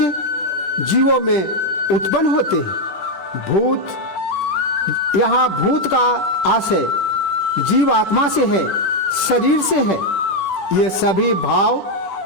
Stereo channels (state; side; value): late; right; 10 ms